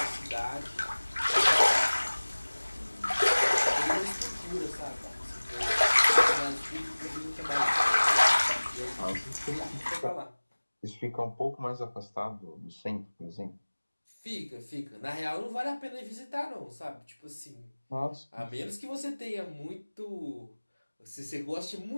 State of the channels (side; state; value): both; inverted; correlation -1.00